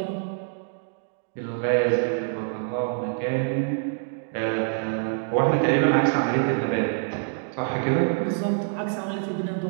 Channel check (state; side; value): silent; left; digital silence